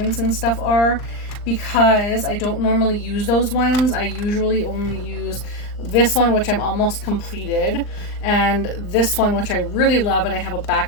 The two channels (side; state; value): right; late; 39 ms